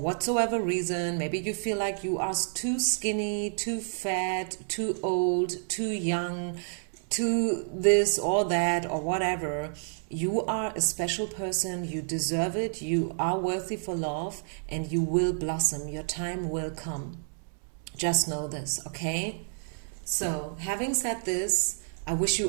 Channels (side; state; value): left; silent; 58 dB below the other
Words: reason. Maybe you feel like you are too skinny, too fat, too old, too young, too this or that or whatever. You are a special person, you deserve it, you are worthy for love, and you will blossom. Your time will come. Just know this, okay? So, having said this, I wish